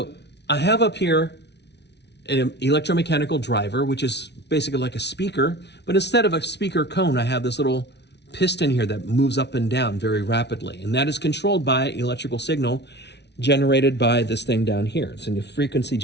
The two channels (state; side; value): late; right; 0.50 ms